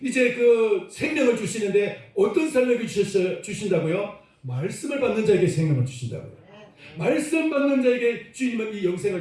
이제 그 생명을 주시는데, 어떤 사람에게 주신다고요? 말씀을 받는 자에게 생명을 주신다고요. 말씀 받는 자에게 주님은 이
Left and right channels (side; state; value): both; identical; correlation 1.00